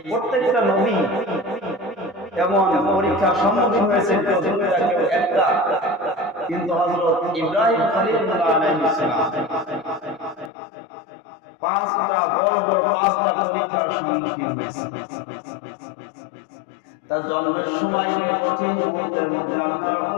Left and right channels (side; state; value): right; drops out; at 10.5 s